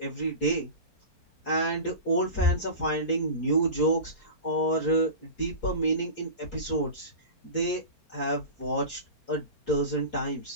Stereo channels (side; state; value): right; late; 4.4 ms